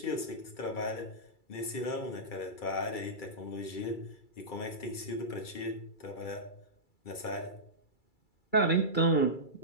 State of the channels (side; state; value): right; late; 2.3 ms